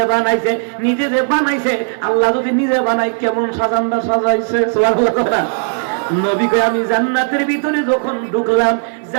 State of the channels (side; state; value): left; silent; digital silence